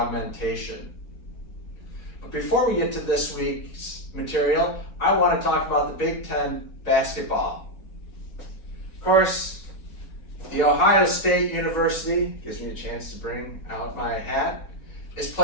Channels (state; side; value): late; right; 5.1 ms